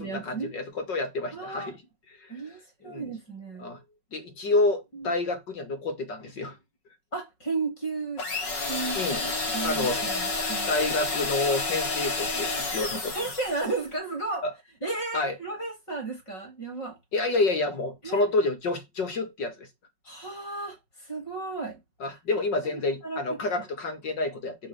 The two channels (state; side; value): late; right; 5.4 ms